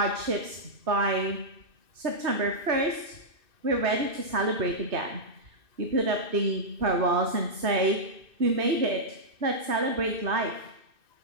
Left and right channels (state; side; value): late; left; 2.6 ms